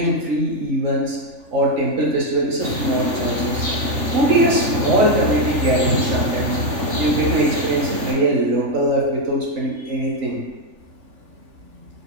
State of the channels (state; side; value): late; left; 3.4 ms